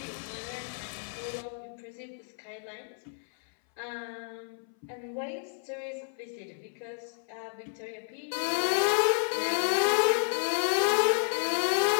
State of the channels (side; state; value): right; silent; 57 dB below the other